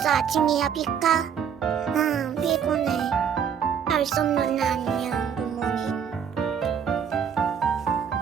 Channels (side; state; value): left; quieter; 7.8 dB